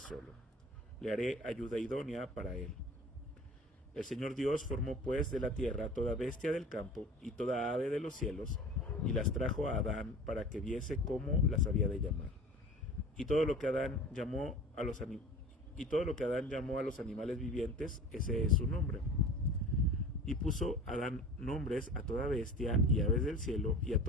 le haré ayuda idónea para él. El Señor Dios formó pues de la tierra toda bestia del campo y toda ave de los cielos, y las trajo a Adán para que viese cómo las había de llamar. Y todo lo que Adán llamó a los animales vivientes, ese es su nombre. Y puso Adán nombres a toda bestia y aves del cielo y a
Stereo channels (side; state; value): both; normal; correlation 0.40